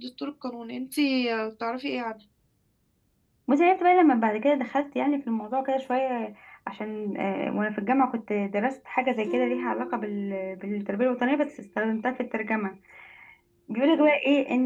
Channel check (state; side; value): identical; both; correlation 1.00